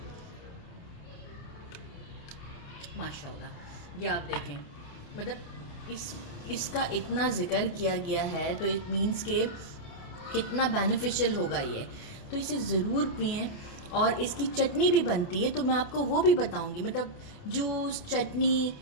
माशाल्लाह। ये आप देखें, मतलब इसका इतना जिक्र किया गया है, तो इट मीन्स के कितना बेनिफिशियल होगा ये। तो इसे ज़रूर पिएं। और इसकी चटनी भी बनती है, तो मैं आपको वो भी बताऊंगी। मतलब जूस, चटनी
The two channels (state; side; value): late; right; 28 ms